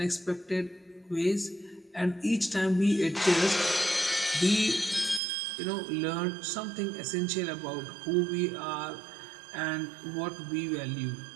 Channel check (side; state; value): left; drops out; at 5.2 s